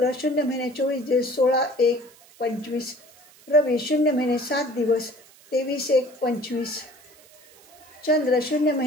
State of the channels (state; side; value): noise; right; hiss, 26 dB below the sound